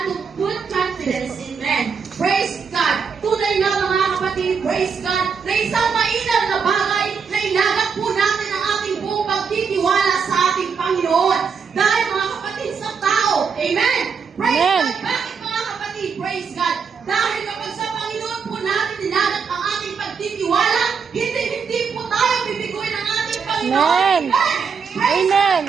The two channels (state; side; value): quieter; left; 6.0 dB